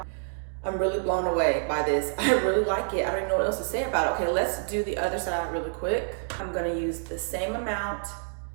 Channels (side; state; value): left; silent; 60 dB below the other